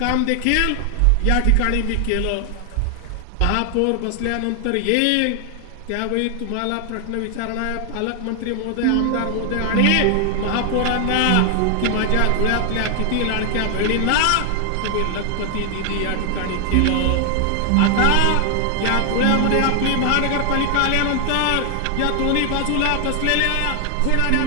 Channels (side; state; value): both; different; correlation 0.00